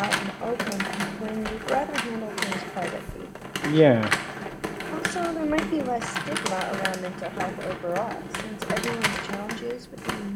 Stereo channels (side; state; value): both; identical; correlation 1.00